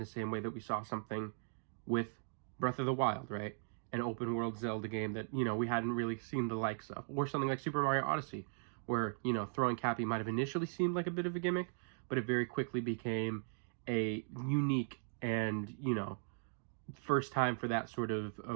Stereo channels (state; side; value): silent; left; digital silence